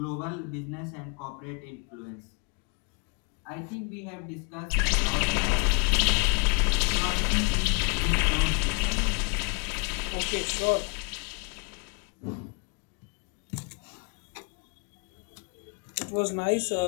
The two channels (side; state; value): right; quieter; 32.9 dB